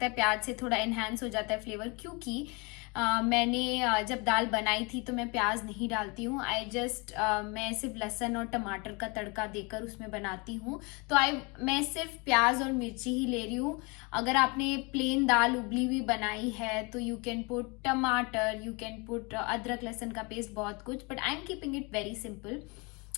है प्याज से थोड़ा इन्हांस हो जाता है फ्लेवर, क्योंकि मैंने जब दाल बनाई थी तो मैं प्याज नहीं डालती हूँ। मैं सिर्फ लहसुन और टमाटर का तड़का देकर उसमें बनाती हूँ। तो मैं सिर्फ प्याज और मिर्ची ही ले रही हूँ। अगर आपने प्लेन दाल उबली हुई बनाई है तो you can put tamatar, you can put adrak lahsun का पेस्ट, बहुत कुछ, but I am keeping it very simple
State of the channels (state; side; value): quieter; right; 29.4 dB